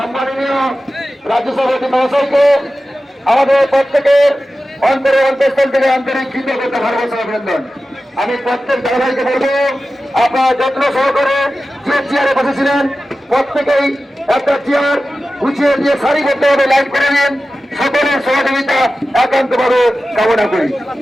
রাজ্য সভাপতি মহাশয়কে আমাদের প্রত্যেকের অন্তঃস্থল থেকে আন্তরিক কৃতজ্ঞতা ভালোবাসা অভিনন্দন। আমি প্রত্যেক দাদাভাইকে বলবো আপনারা যত্ন সহকারে যে চেয়ারে বসেছিলেন প্রত্যেকেই একটা চেয়ার গুছিয়ে দিয়ে সারিবদ্ধভাবে লাইন করে নিন। সকলের সহযোগিতা একান্তভাবে কামনা করি।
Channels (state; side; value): normal; both; correlation 0.94